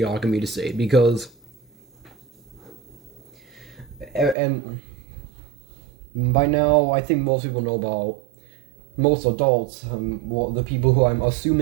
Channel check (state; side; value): drops out; left; at 4.4 s